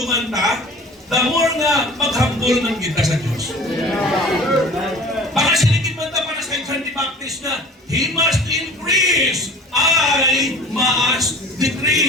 ta, the more nga maghambol ng kita sa Diyos. Baka siligid man ta para sa John the Baptist na, He must increase, I must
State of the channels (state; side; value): normal; both; correlation 0.42